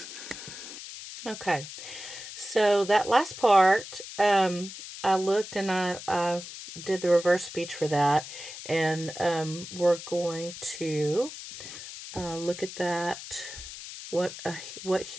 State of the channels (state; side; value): noise; left; hiss, 12 dB below the sound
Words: Okay. So that last part, I looked and I did the reverse speech for that. And we're going to look at that, what